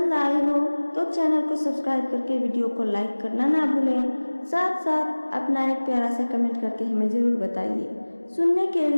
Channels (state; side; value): inverted; both; correlation -1.00